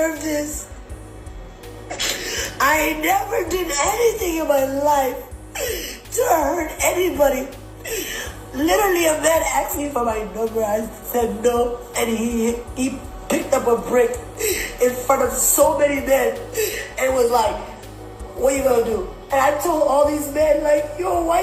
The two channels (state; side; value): identical; both; correlation 1.00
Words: this? I never did anything in my life to hurt anybody. Literally, a man asked me for my number. I said no, and he picked up a brick in front of so many men and was like, "What you gonna do?" And I told all these men, like, "Yo,